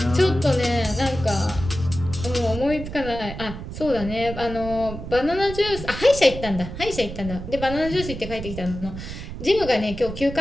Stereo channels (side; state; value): right; noise; rumble, 9 dB below the sound